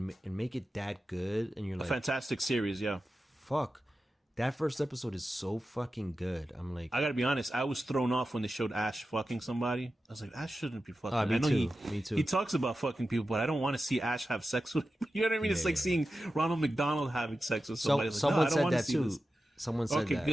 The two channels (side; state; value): both; normal; correlation 0.93